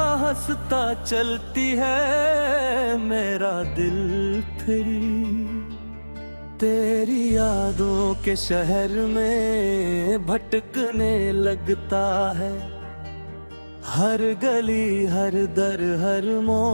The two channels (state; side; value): inverted; both; correlation -1.00